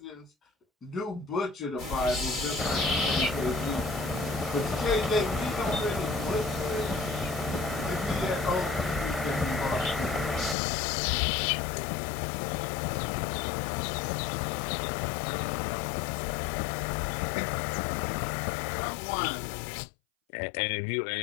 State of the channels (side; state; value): right; drops out; at 10.6 s